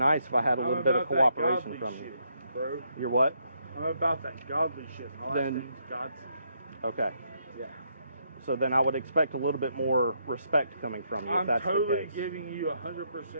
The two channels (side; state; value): both; inverted; correlation -0.76